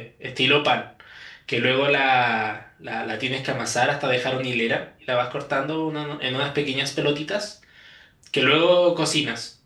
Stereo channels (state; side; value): identical; both; correlation 1.00